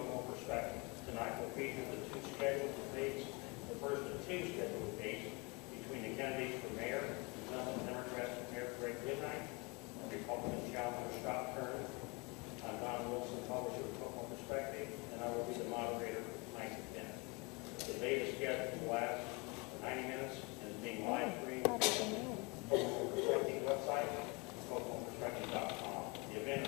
Perspective. Tonight will feature the two scheduled debates, the first of two scheduled debates between the candidates for mayor, incumbent Democrat Mayor Goodnight, and Republican challenger Kern. I'm Don Wilson, publisher of Kokomo Perspective, and I will be the moderator for tonight's event. The debate is scheduled to last 90 minutes and is being live streamed on the Kokomo Perspective website, KokomoPerspective.com. The event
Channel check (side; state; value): right; quieter; 28.8 dB